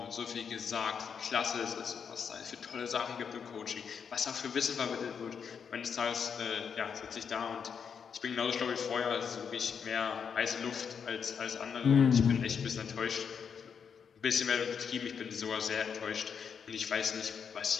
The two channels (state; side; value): quieter; right; 6.8 dB